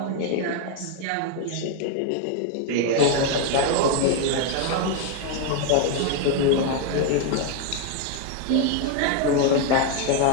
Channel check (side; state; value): both; different; correlation 0.01